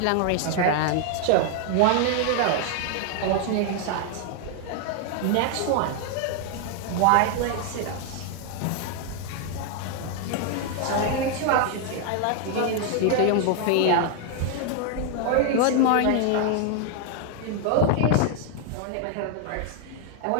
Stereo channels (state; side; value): different; both; correlation 0.00